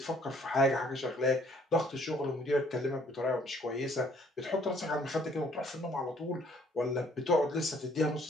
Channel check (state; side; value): normal; both; correlation 0.61